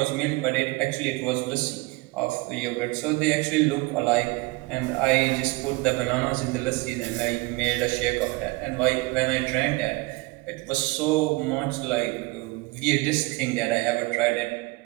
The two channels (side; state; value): left; quieter; 23.6 dB